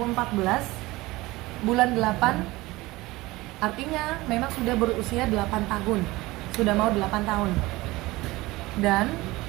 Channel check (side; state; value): left; quieter; 20.1 dB